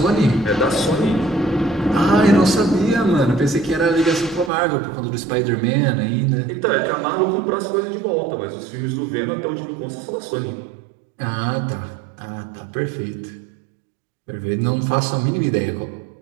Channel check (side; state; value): left; drops out; at 4.5 s